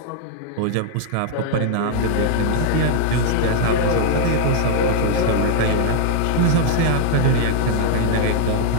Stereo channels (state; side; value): different; both; correlation -0.01